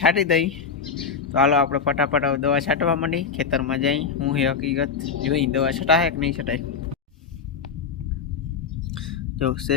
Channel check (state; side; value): quieter; right; 6.1 dB